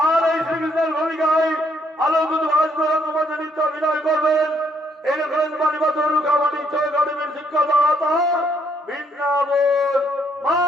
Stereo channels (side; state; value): both; normal; correlation 0.70